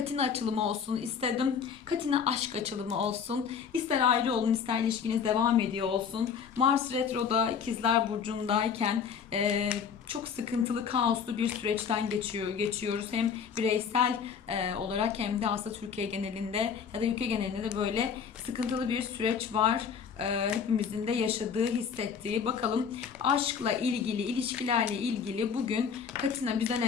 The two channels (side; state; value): right; quieter; 6.9 dB